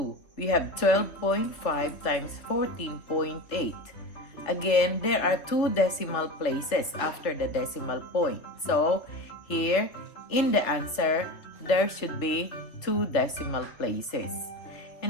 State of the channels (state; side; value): late; right; 3.1 ms